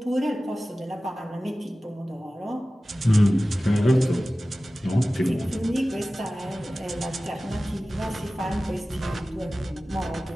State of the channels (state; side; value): normal; both; correlation 0.96